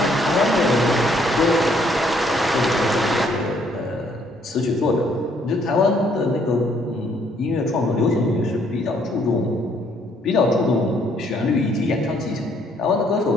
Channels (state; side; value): normal; both; correlation 0.66